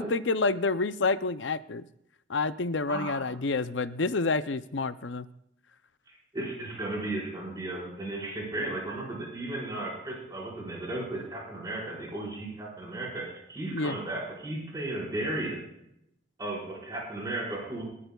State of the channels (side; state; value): both; normal; correlation 0.03